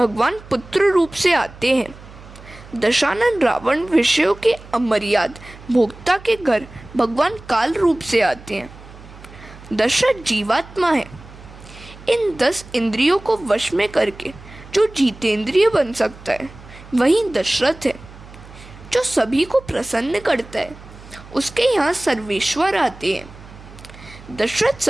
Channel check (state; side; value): noise; right; hum, 19 dB below the sound